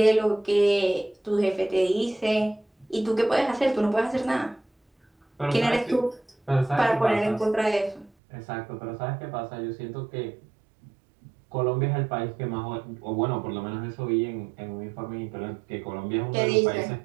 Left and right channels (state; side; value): drops out; left; at 8.1 s